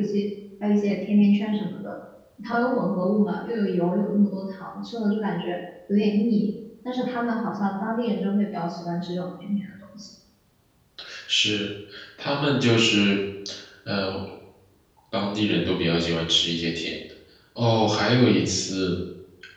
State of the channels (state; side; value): identical; both; correlation 1.00